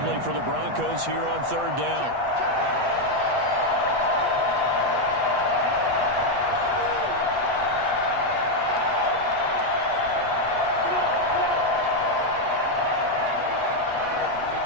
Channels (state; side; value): late; left; 8.2 ms